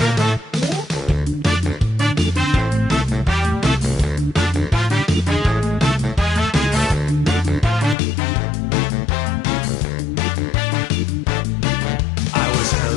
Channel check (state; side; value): drops out; right; at 8.0 s